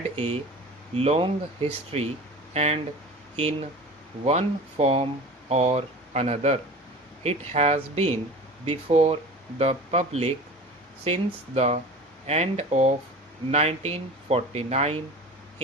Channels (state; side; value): normal; both; correlation 0.37